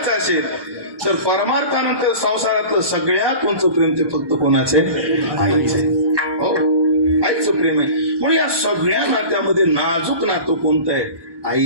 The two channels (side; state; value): left; late; 1.2 ms